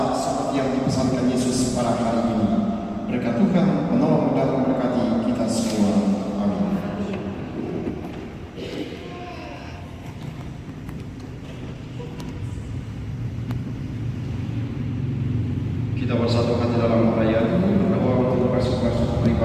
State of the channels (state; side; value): identical; both; correlation 1.00